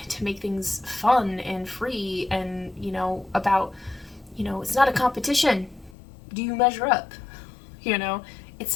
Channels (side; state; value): right; drops out; at 6.0 s